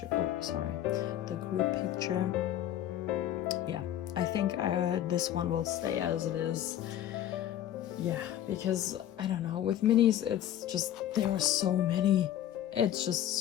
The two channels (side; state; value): right; quieter; 11.7 dB